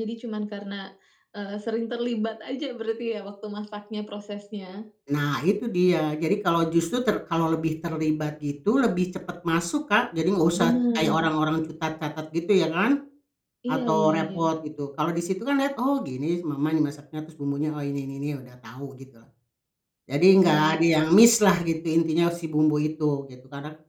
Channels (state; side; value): identical; both; correlation 1.00